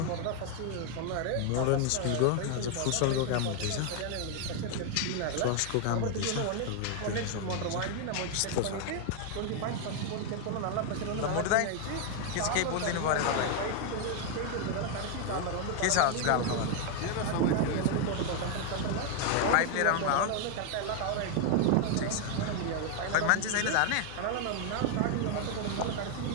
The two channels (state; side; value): different; both; correlation 0.00